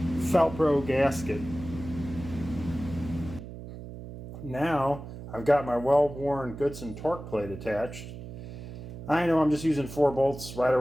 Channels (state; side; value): noise; right; hum, 12 dB below the sound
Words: Felpro gasket. Now I've got my well-worn Goodson torque plate attached. I know I'm just using 4 bolts right